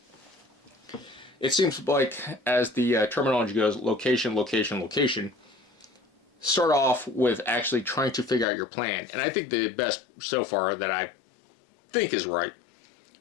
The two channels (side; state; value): right; drops out; at 8.5 s